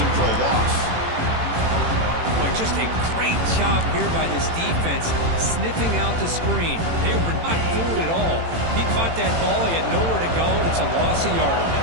for a loss. Boy, just a great job here by this defense, sniffing out the screen. They were not fooled at all. He caught that ball. He had nowhere to go. It's a loss of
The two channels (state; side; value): late; left; 18 ms